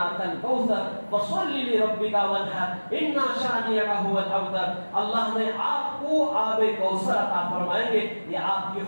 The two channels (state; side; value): inverted; both; correlation -1.00